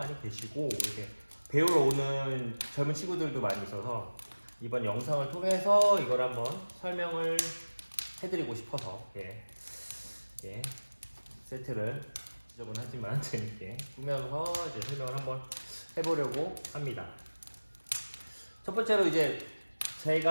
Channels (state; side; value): inverted; both; correlation -1.00